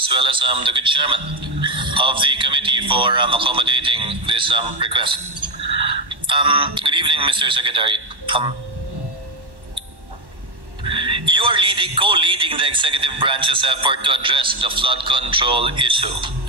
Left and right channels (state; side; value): late; left; 1.1 ms